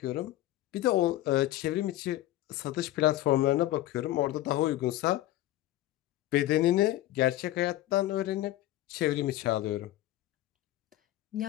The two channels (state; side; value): quieter; right; 15.1 dB